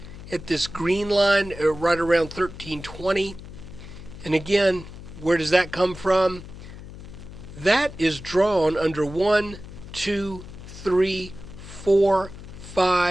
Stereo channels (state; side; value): noise; left; hum, 14 dB below the sound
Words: at this green line right around 1320. And again, where does that come from? That is drawn under 1, 2, 3, 4,